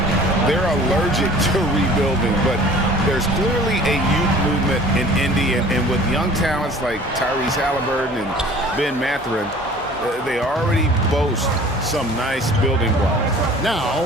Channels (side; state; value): both; normal; correlation 0.47